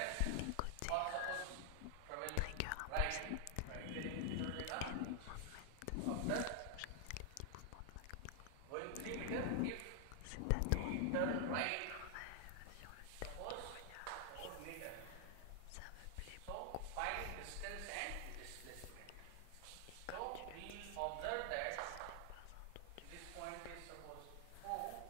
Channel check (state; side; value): different; both; correlation 0.00